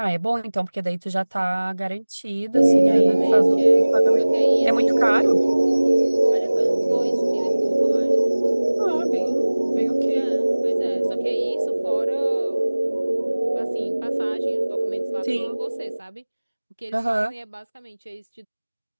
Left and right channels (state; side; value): inverted; both; correlation -1.00